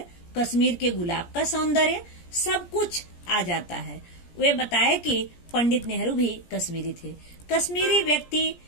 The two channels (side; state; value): right; late; 17 ms